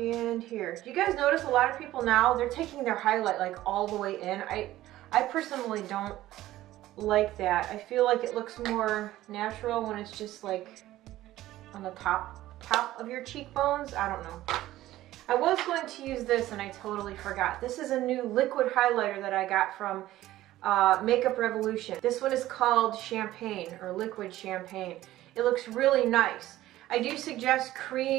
here. Do you guys notice a lot of people now, they're taking their highlight like all the way in? I personally don't like that. I feel like it looks more natural when it's just like on the top of your cheekbones. I don't know. I was going to use this and I totally forgot. This is a new liquid highlighter that I got from Makeup Revolution. This one is called Champagne, or Liquid Champagne. It looks really nice. I do suggest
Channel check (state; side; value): quieter; left; 15.1 dB